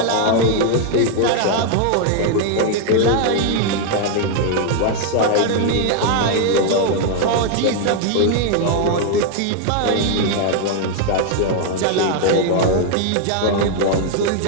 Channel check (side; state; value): both; different; correlation 0.00